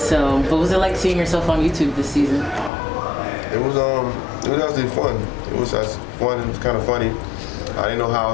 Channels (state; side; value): drops out; right; at 2.7 s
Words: what was it like seeing yourself on YouTube this season? It was actually fun. It was just fun. It was kind of funny. I didn't know how I